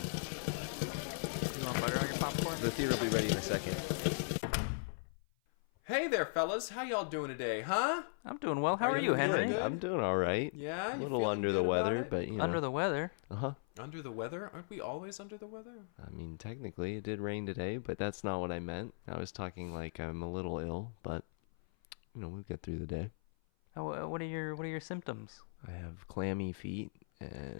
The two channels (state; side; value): silent; right; 52 dB below the other